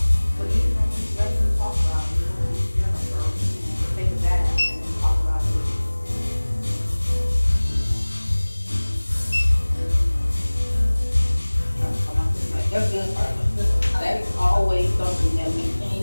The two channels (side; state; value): both; inverted; correlation -1.00